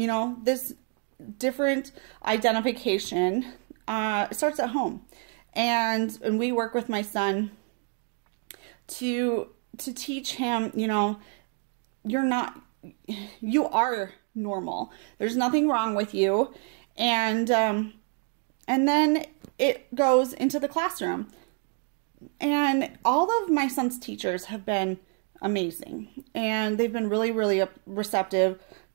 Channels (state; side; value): quieter; left; 35.4 dB